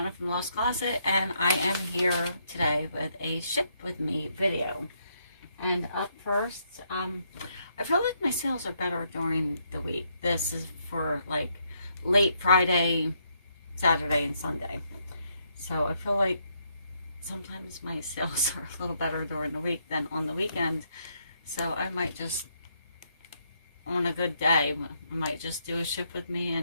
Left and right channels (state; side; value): inverted; both; correlation -0.75